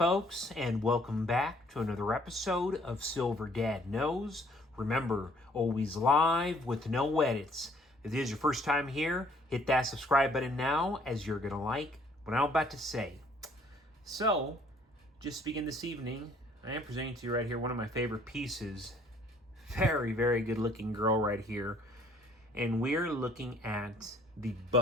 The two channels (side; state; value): both; normal; correlation 0.61